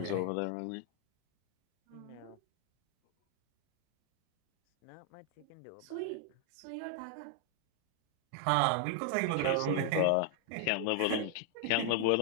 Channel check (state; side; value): different; both; correlation 0.00